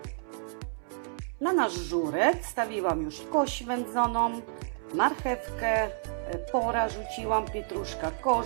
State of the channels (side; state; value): left; silent; 58 dB below the other